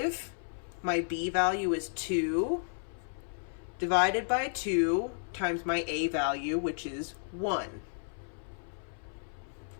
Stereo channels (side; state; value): right; silent; 56 dB below the other